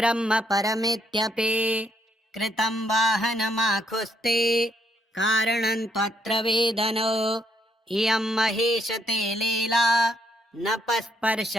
परमित्यपि। कृतं वाहनमाखुस्ते कारणं त्वत्र वेदनो। इयं महेशते लीला न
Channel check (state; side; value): normal; both; correlation 0.73